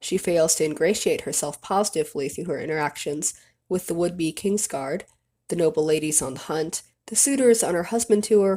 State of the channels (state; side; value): identical; both; correlation 1.00